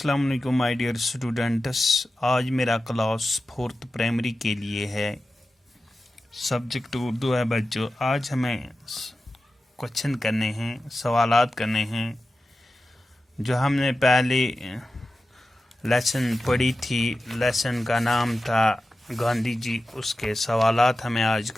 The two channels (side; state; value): both; normal; correlation 0.93